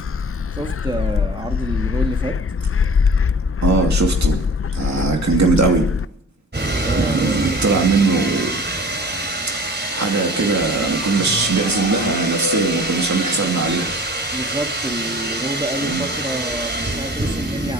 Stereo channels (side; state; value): both; normal; correlation 0.43